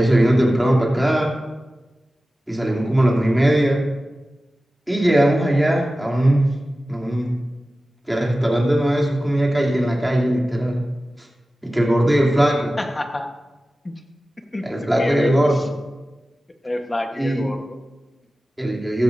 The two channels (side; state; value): both; normal; correlation 0.95